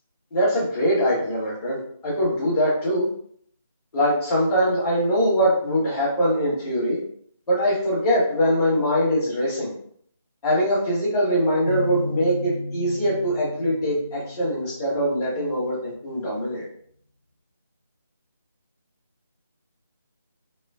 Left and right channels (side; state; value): both; inverted; correlation -0.62